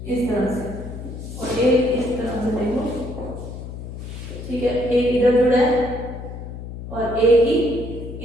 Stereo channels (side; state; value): left; noise; hum, 10 dB below the sound